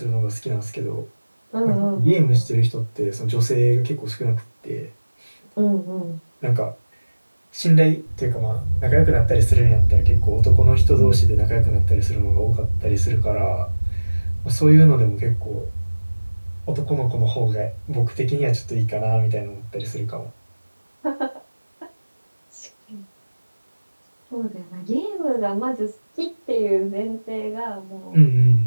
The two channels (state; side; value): inverted; both; correlation -1.00